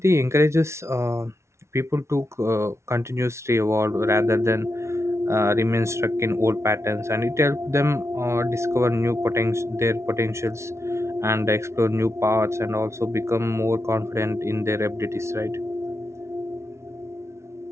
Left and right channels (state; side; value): late; left; 0.13 ms